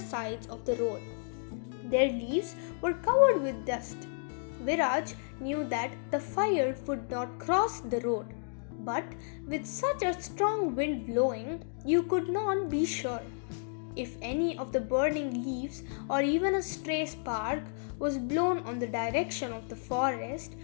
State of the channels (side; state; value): right; silent; digital silence